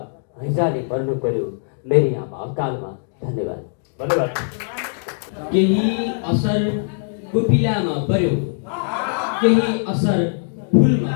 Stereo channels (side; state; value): right; silent; digital silence